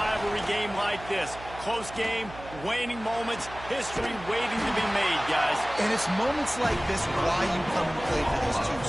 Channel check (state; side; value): noise; right; hum, 15 dB below the sound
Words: game like this. Close game, waning moments, history waiting to be made, guys. And it's moments like this why you come and play for these two